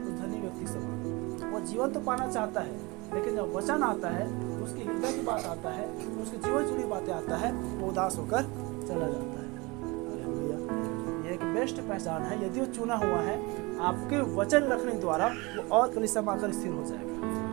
तो धनी व्यक्ति समान, वो जीवन तो पाना चाहता है, लेकिन जब वचन आता है, उसकी हृदय की बात आता है, उसके जीवन जुड़ी बातें आता है, वो उदास होकर चला जाता है। हालेलुया। ये एक बेस्ट पहचान है। यदि वो चुना हुआ है, आपके वचन रखने द्वारा वो और कलीसिया में आकर स्थिर हो जाएगा,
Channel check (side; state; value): left; quieter; 25.2 dB